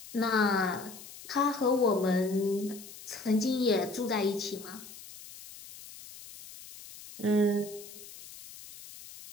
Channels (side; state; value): left; noise; hiss, 16 dB below the sound